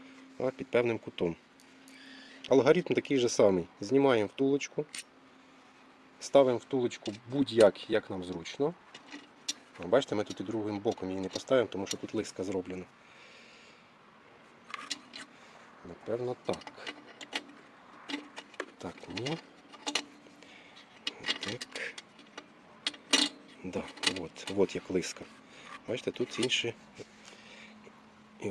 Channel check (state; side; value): identical; both; correlation 1.00